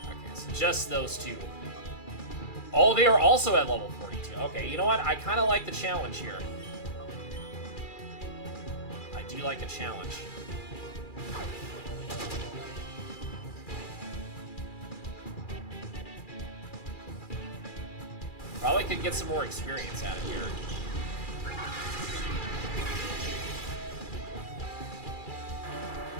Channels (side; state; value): right; late; 2.4 ms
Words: Okay, so just those two. Oh, they are also at level 42. Okay, you know what? I kind of like the challenge here. I do like a challenge. Probably could get some more experience out of here.